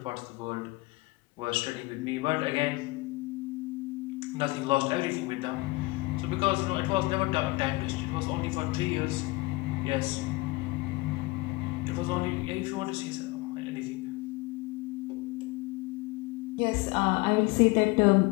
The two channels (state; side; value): quieter; right; 23.0 dB